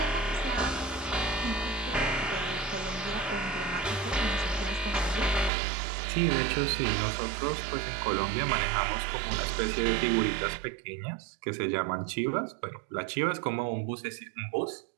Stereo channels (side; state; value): left; drops out; at 5.5 s